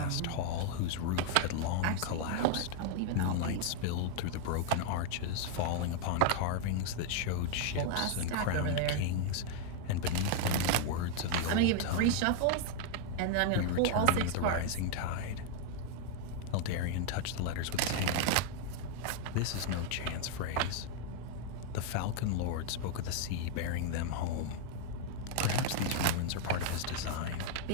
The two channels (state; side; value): different; both; correlation 0.00